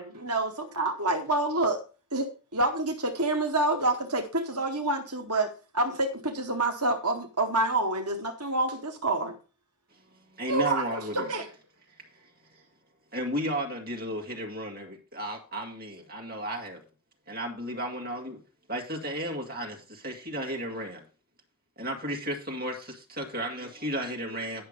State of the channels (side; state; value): both; normal; correlation -0.14